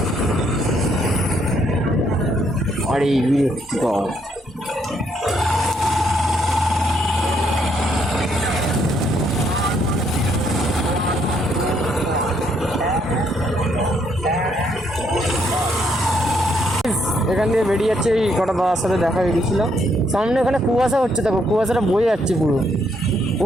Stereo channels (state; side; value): normal; both; correlation 0.72